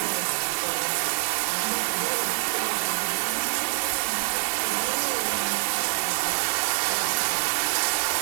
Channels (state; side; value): silent; left; digital silence